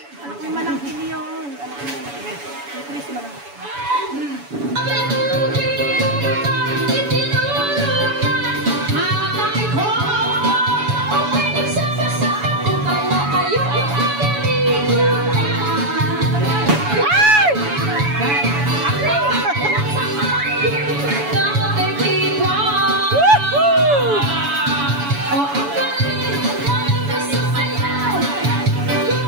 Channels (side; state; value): left; late; 7.0 ms